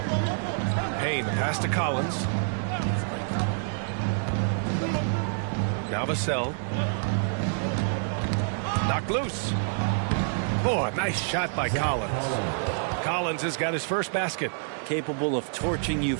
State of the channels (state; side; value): silent; left; digital silence